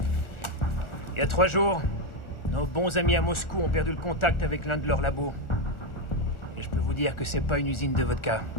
Il y a 3 jours, nos bons amis à Moscou ont perdu le contact avec l'un de leurs labos. Et je peux vous dire que c'est pas une usine de vodka.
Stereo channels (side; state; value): right; late; 1.4 ms